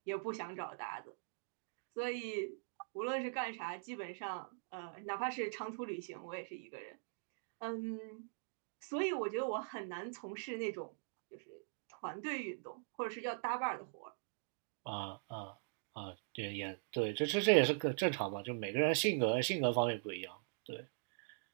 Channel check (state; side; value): silent; left; digital silence